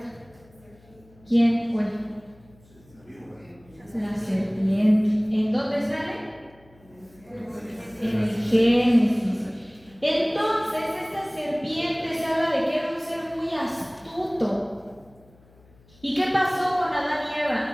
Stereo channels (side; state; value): left; noise; hum, 28 dB below the sound